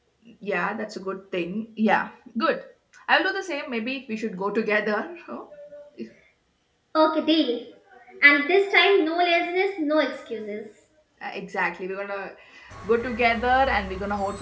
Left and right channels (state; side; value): identical; both; correlation 1.00